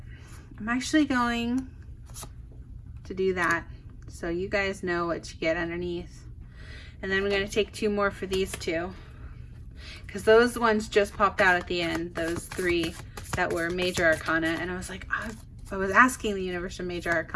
I'm actually going to do that so you guys know what you get underneath. And then we're going to take 2 more for these 2. Because those ones just popped out at the end, those 3 that were Major Arcana. And I was like, I was asking the universe for Major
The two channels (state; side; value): identical; both; correlation 1.00